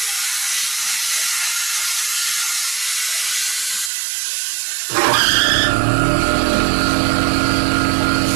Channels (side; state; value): left; drops out; at 3.9 s